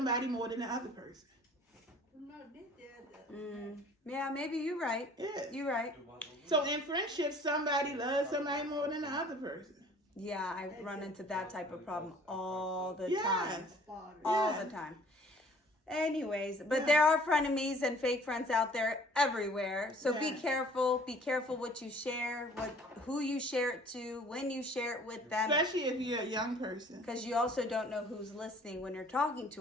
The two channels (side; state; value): both; normal; correlation 0.53